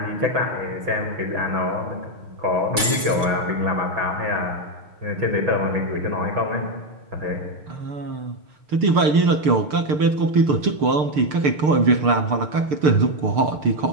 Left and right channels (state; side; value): late; left; 6.4 ms